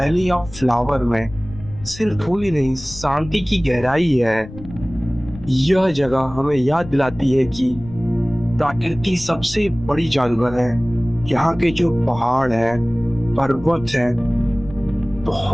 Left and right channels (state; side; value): noise; left; rumble, 16 dB below the sound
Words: ऑफ फ्लावर में सिर्फ फूल ही नहीं, शांति की गहराई है। यह जगह हमें याद दिलाती है कि प्रकृति सबसे बड़ी जानवर है। यहाँ के जो पहाड़ है, पर्वत है,